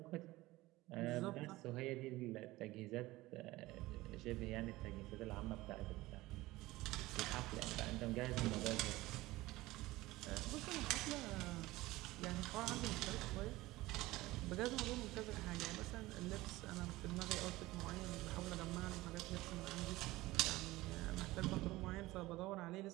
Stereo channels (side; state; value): left; quieter; 18.7 dB